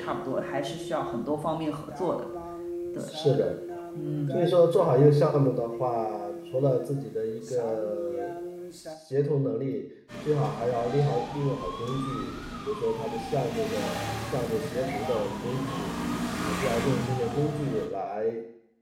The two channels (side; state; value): both; identical; correlation 1.00